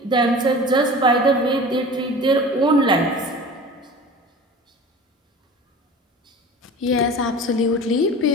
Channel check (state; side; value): normal; both; correlation 0.38